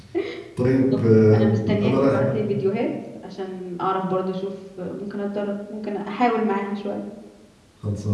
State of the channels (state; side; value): identical; both; correlation 1.00